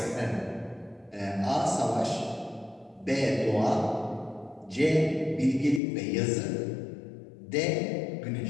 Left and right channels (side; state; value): right; drops out; at 5.8 s